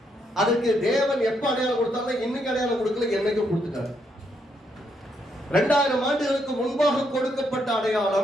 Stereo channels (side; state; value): both; normal; correlation 0.76